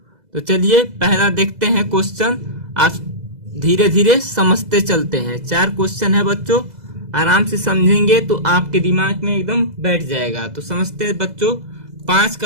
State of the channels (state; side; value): late; left; 2.0 ms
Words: तो चलिए पहला देखते हैं क्वेश्चन। आप धीरे धीरे समझते चलते हैं। 4 क्वेश्चन है बच्चों, आराम से समझेंगे तो आपके दिमाग में एकदम बैठ जाएगा। तो समझते हैं बच्चों। 5